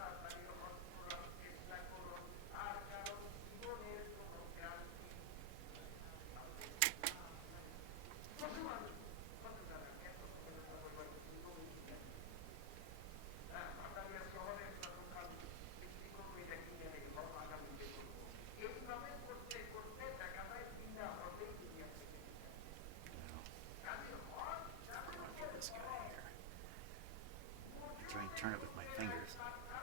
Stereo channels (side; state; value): both; different; correlation 0.00